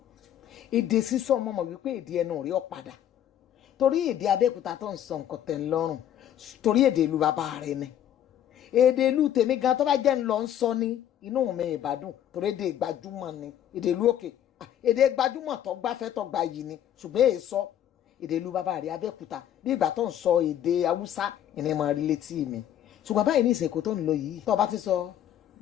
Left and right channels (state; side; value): quieter; right; 10.7 dB